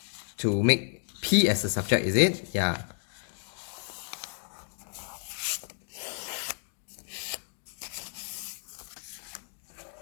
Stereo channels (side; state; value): right; silent; digital silence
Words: to make P as a subject, is it? Yeah.